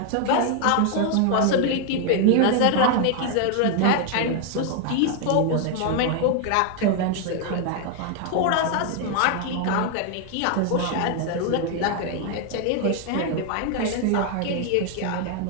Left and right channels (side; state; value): both; different; correlation 0.00